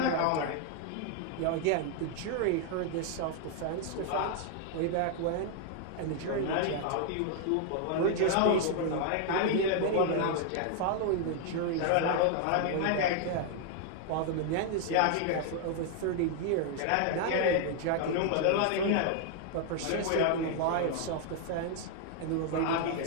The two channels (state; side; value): different; both; correlation 0.00